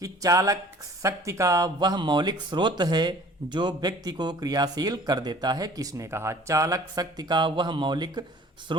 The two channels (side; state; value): both; normal; correlation 0.50